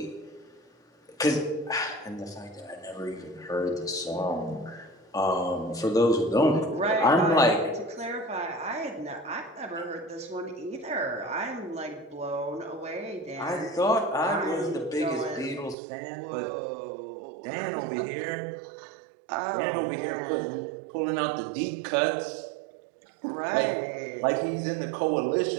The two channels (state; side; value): drops out; left; at 15.8 s